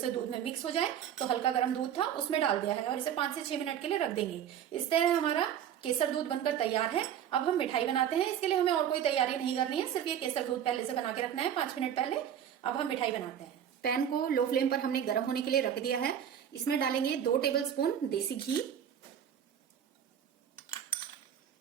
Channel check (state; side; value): quieter; left; 9.5 dB